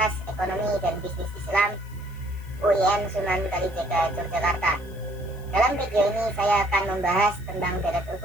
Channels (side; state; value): left; noise; hiss, 25 dB below the sound